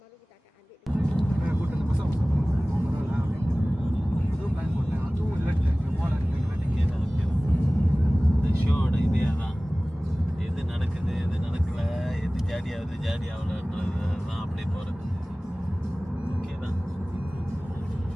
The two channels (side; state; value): both; normal; correlation 0.98